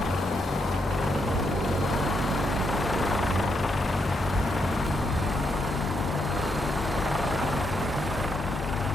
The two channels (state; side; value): normal; both; correlation 0.79